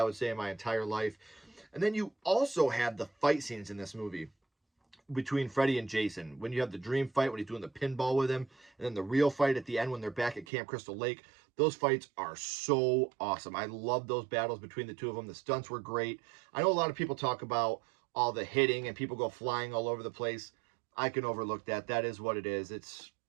would say in my entire life. And then you also have the fight scenes in this movie. between Freddy and Jason. When you have the dream fight, when he's doing the pinball with him, and then the real fight at the end when they're back at Camp Crystal Lake, those fights are so awesome. I love those battles between the two of them. The stunts were great. I know a lot of people talk about all the hitting and people go flying all over the place. I can overlook that. That is what it is. It's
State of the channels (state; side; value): drops out; left; at 10.5 s